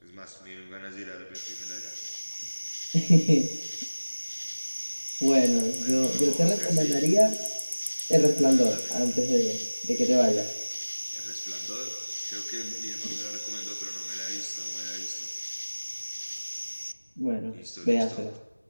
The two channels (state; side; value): inverted; both; correlation -1.00